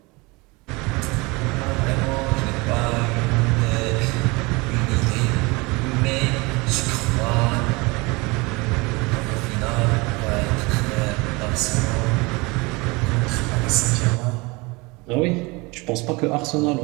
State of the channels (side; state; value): left; quieter; 25.5 dB